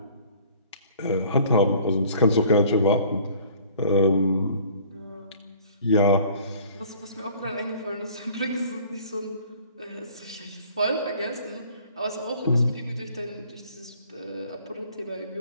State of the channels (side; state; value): both; inverted; correlation -0.51